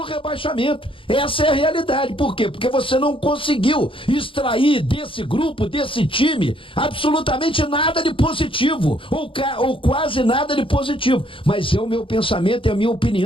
Essa é a realidade. Por quê? Porque você não conseguiu extrair desse grupo, desse time, absolutamente nada de positivo, ou quase nada de positivo. Mas é o meu pensamento, é a minha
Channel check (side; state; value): right; late; 0.25 ms